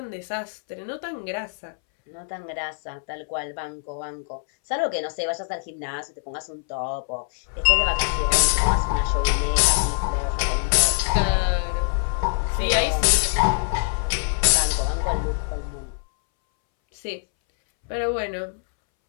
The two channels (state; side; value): silent; right; 63 dB below the other